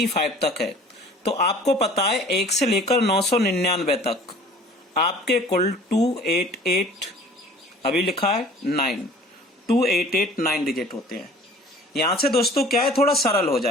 तक है, तो आपको पता है 1 से लेकर 999 तक आपके कुल 288 अभी लिखा है 9, 2889 डिजिट होते हैं। यहां से दोस्तों क्या है, थोड़ा सरल हो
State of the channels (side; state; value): both; normal; correlation 0.48